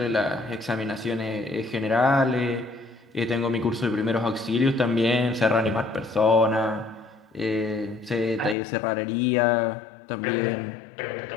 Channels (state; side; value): drops out; right; at 8.6 s